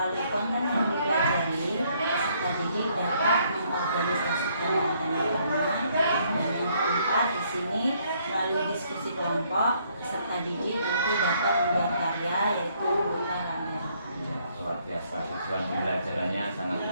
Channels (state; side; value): inverted; both; correlation -0.68